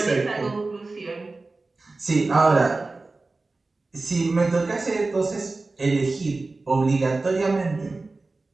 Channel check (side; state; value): left; quieter; 3.5 dB